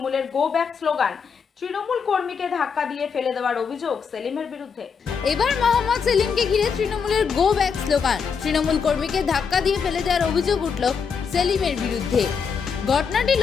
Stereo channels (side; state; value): right; quieter; 6.1 dB